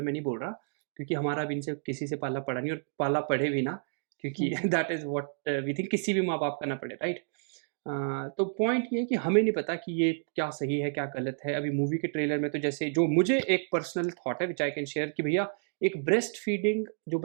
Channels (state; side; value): silent; left; digital silence